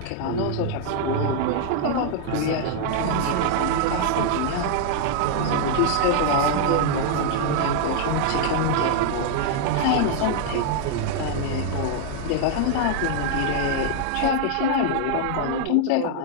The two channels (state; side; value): different; both; correlation 0.00